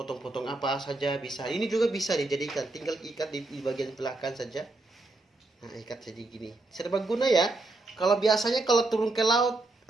apa saja bisa. Ini juga bisa dijadikan, tinggal ikat di bagian belakang saja. Nah, ikat jadi gini. Serbaguna ya. Kalau biasanya kalau turun ke laut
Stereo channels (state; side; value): quieter; left; 3.0 dB